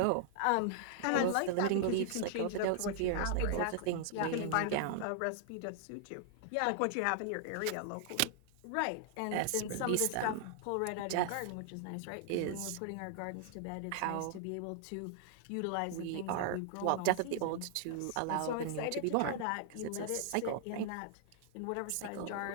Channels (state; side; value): different; both; correlation -0.01